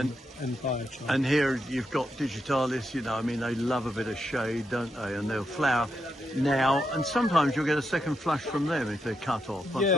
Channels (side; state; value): both; normal; correlation 0.83